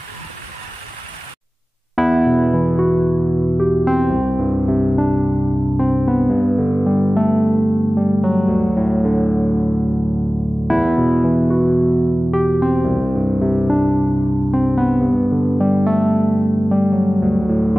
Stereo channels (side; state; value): both; normal; correlation 0.97